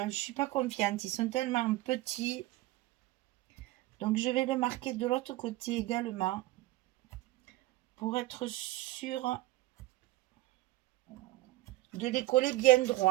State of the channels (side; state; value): left; quieter; 17.6 dB